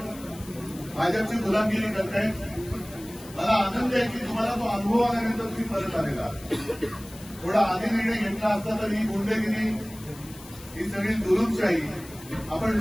भाजपची गुलामगिरी करतायत. मला आनंद आहे की तुम्हाला तो अनुभव आल्यानंतर तुम्ही परत आलेला. थोडा आधी निर्णय घेतला असता तर ही गुंडगिरी, ही सगळी जुलूमशाही आपण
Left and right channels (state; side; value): noise; left; hiss, 19 dB below the sound